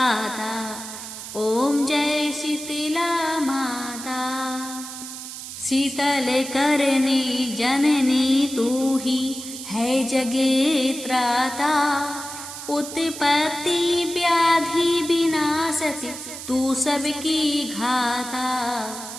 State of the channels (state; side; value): noise; right; hiss, 10 dB below the sound